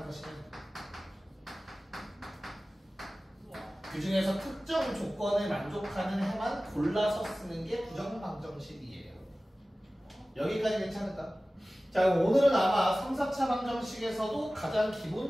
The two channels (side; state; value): both; normal; correlation 0.97